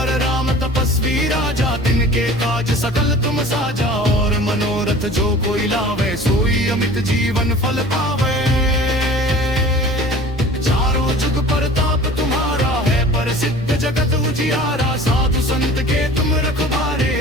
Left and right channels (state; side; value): normal; both; correlation 0.43